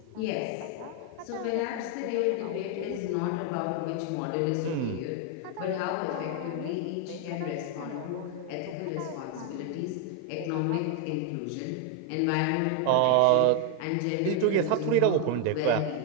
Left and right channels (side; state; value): both; different; correlation 0.00